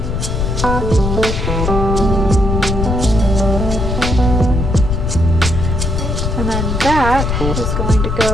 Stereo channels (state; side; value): noise; left; rumble, 1 dB below the sound